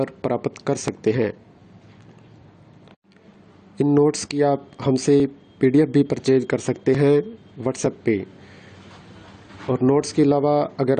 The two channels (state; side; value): identical; both; correlation 1.00